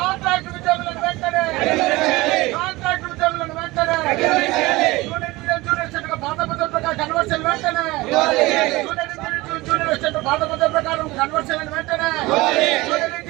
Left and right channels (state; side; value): quieter; left; 20.8 dB